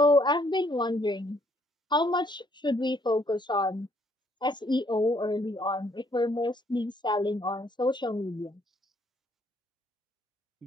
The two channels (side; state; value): both; normal; correlation 0.67